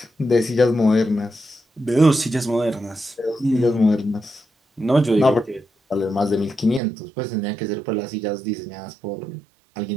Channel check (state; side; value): drops out; left; at 6.8 s